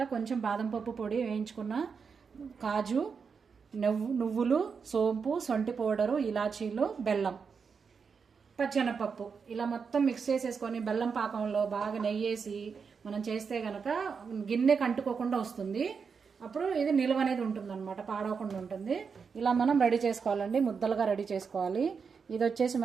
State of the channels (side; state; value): left; quieter; 5.8 dB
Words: కొంచెం బాదం పప్పు పొడి వేయించుకున్న, కాజు, నువ్వులు, సోంపు, సొంటి పౌడరు, ఇలాచీలు, బెల్లం, పచ్చెనపప్పు ఇలా మొత్తం మిక్స్ చేసేసుకొని బెల్లం పాకంలో బాగా నెయ్యేసి మనం చేస్తే గనక గిన్నె కంటుకోకుండా వస్తుంది. అప్పుడు ఇది నిల్వ అనేది ఉంటుంది అనమాట, పాడవకుండా ఉంటుంది. ఇలా మనం రెడీ చేసుకోవాలండి, ముద్దలుగా రెడీ చేసుకోవాలి. ఇది వచ్చేసి